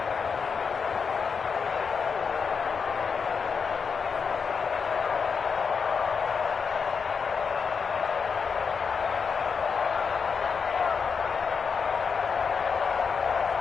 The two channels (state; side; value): quieter; right; 5.8 dB